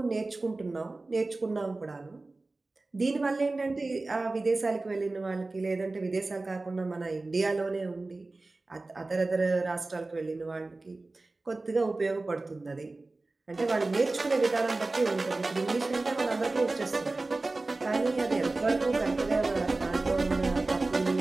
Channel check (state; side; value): quieter; left; 3.2 dB